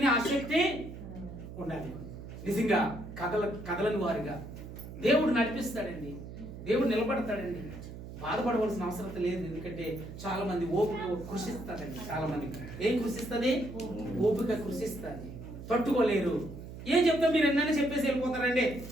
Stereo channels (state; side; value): noise; right; hum, 12 dB below the sound